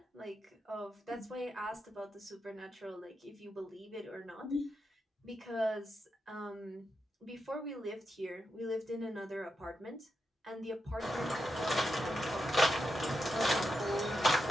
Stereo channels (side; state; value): both; normal; correlation 0.86